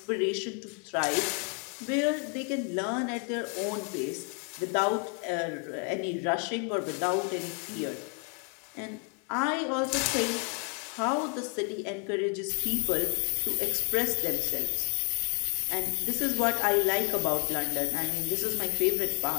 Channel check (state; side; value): quieter; right; 38.4 dB